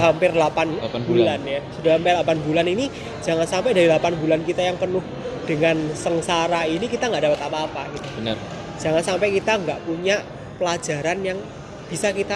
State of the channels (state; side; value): identical; both; correlation 1.00